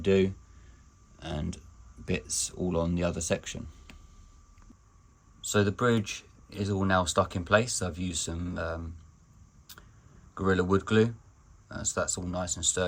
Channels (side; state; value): both; identical; correlation 1.00